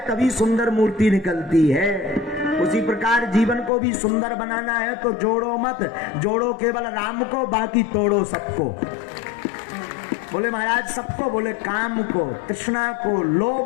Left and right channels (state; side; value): drops out; right; at 3.7 s